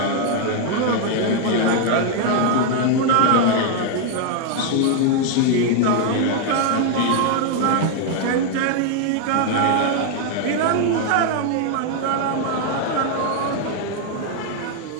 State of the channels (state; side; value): different; both; correlation 0.01